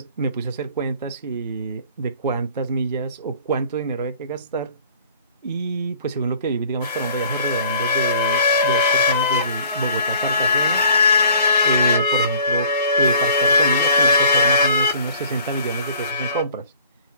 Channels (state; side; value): inverted; both; correlation -0.54